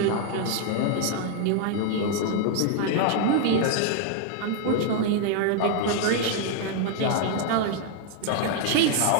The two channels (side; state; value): both; different; correlation 0.00